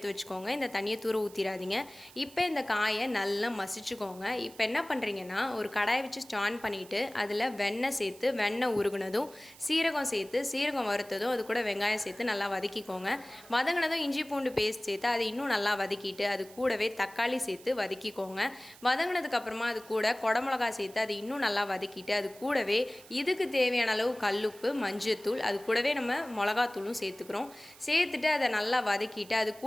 வச்சுக்கோங்க. இந்த தண்ணியை தூர ஊற்றிடாதீங்க. இப்போ இந்த காயை நல்லா மசிச்சுக்கோங்க. இப்போ என்ன பண்ணுறீங்கன்னா, ஒரு கடாயை வச்சு ஸ்டான் பண்ணிவிட்டு அதில் வெண்ணெய் சேர்த்து, வெண்ணெய் உருகுனதும் சீரகம் சேர்த்து, சீரகம் வறுத்ததும் அது கூட வெங்காயம் சேர்த்து நல்லா வதக்கிக்கோங்க. வதங்கினதும் இஞ்சி பூண்டு பேஸ்ட் சேர்த்து அதை இன்னும் நல்லா வதக்கிட்டு அது கூடவே தக்காளி சேர்த்து வதக்கிக்கோங்க. வதங்கினதுக்கப்புறமா அது கூட குடமிளகா சேர்த்து அது இன்னும் நல்லா வதக்கிட்டு அது கூடவே இதுக்கு தேவையான அளவு கல்லுப்பு, மஞ்சத்தூள், அது கூடவே நம்ம மிளகாத்தூளும் சேர்த்துக்கிறோம். சேர்த்துட்டு அதை நல்லா வதக்கிட்டு அது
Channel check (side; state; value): right; noise; hiss, 21 dB below the sound